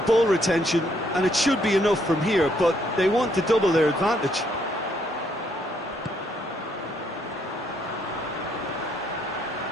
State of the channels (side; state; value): both; normal; correlation 0.71